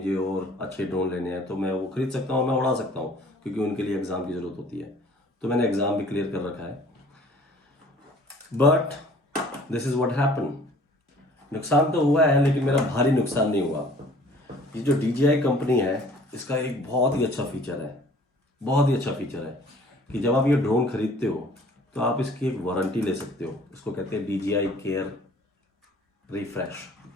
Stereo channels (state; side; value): normal; both; correlation 0.53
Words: और अच्छे ड्रोन लेने हैं तो मैं वो खरीद सकता हूँ, मैं उड़ा सकता हूँ, क्योंकि उनके लिए एग्ज़ाम की ज़रूरत होती है। तो मैंने एग्ज़ाम भी क्लियर कर रखा है। But this is what happen. नुकसान तो हुआ है, लेकिन मेरा भारी नुकसान नहीं हुआ। ये जो DJI कंपनी है, इसका एक बहुत ही अच्छा फीचर है, बहुत ही अच्छा फीचर है कि जब आप ये ड्रोन खरीदते हो तो आप इसकी एक वारंटी ले सकते हो। इसको कहते हैं DJI केयर रिफ्रेश।